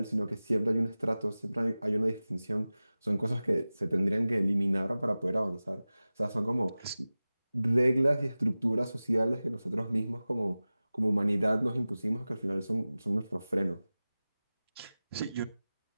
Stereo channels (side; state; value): both; inverted; correlation -0.97